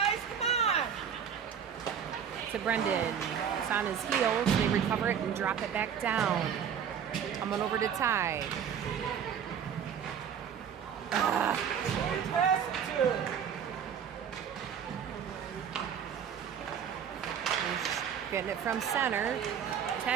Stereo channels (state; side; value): quieter; left; 8.1 dB